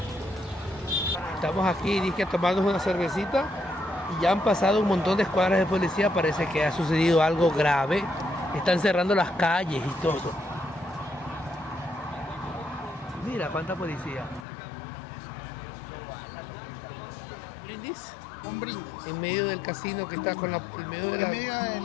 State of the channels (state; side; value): drops out; right; at 14.5 s